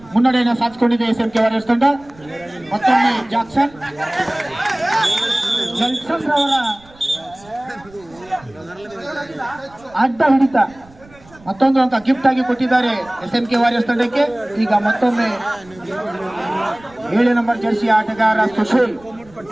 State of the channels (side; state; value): right; noise; rumble, 25 dB below the sound